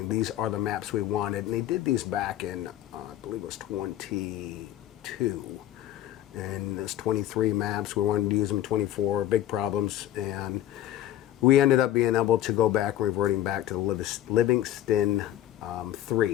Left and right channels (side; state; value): right; quieter; 12.9 dB